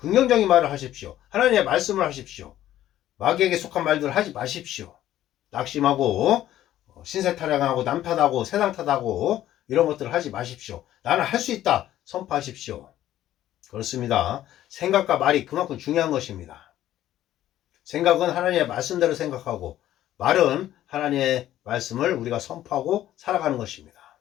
말을 하십시오. 하나님의 말씀을 하십시오. 마귀에게 속한 말들을 하지 마십시오. 낙심하고 신세타령하고 남탓하고 세상 탓하고 이런 것들을 하지 마십시오. 나는 할 수 있다 선포하십시오. 그렇습니다. 생각과 말이 그만큼 중요한 것입니다. 생각은 하나님의 말씀대로 생각하고 말은 하나님의 말씀을 우리가 선포하고 살아가는 것입니다.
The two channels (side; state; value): right; quieter; 13.0 dB